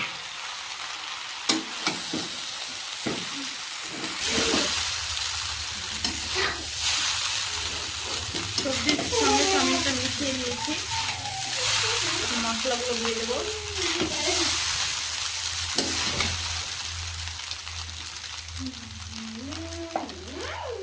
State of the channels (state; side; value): identical; both; correlation 1.00